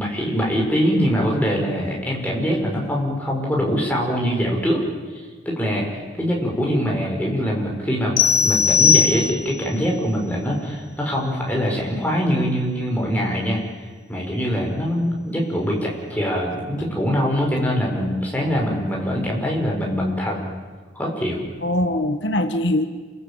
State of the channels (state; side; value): normal; both; correlation 0.60